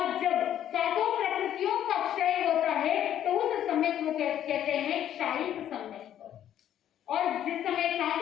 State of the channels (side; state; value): right; quieter; 10.9 dB